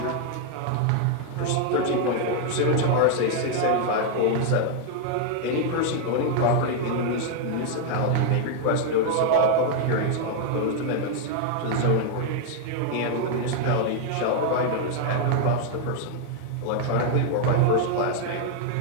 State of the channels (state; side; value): different; both; correlation 0.00